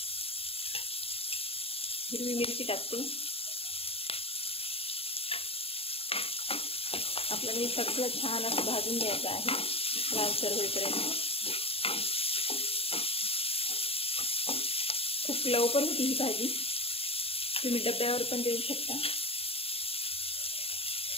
हिरवी मिरची टाकते। आपल्याला हे सगळं छान असं भाजून घ्यायचं आहे लालसर होईपर्यंत। खूप लवकर होती ही भाजी, तुम्ही डब्यावर पण देऊ शकता।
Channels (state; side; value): late; right; 0.28 ms